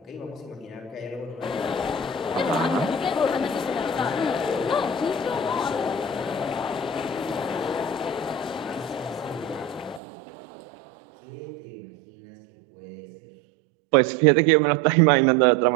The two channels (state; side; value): drops out; left; at 10.0 s